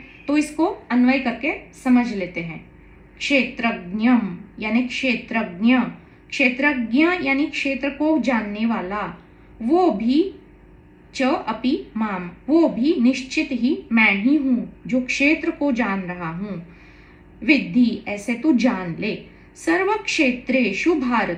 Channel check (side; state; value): both; identical; correlation 1.00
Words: तो इसको अन्वय करके समझ लेते हैं। क्षेत्रज्ञम यानी क्षेत्रज्ञ, क्षेत्रज्ञ यानी क्षेत्र को जानने वाला, वो भी च अपि माम, वो भी निश्चित ही मैं ही हूँ जो क्षेत्र को जान रहा हूँ। विद्धि ऐसे तू जान ले, सर्व क्षेत्रेषु